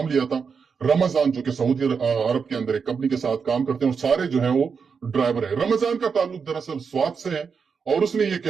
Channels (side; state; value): left; quieter; 5.9 dB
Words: लिया था। रमजान जो कि सऊदी अरब के अंदर एक कंपनी के साथ काम करते हैं और सारे जो है वो ड्राइवर है। रमजान का ताल्लुक दरअसल स्वात से है, और उसने ये